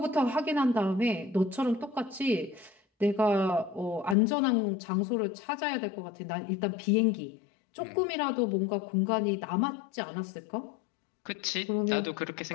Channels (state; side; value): drops out; right; at 4.2 s